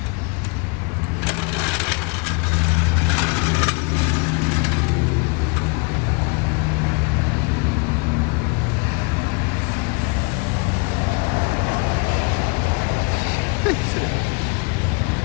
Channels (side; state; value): right; quieter; 31.6 dB